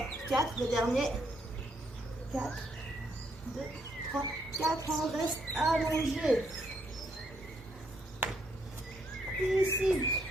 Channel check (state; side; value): normal; both; correlation 0.73